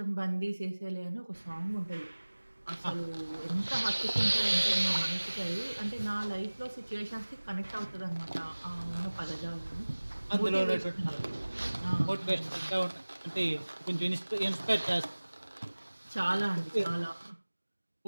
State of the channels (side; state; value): both; inverted; correlation -1.00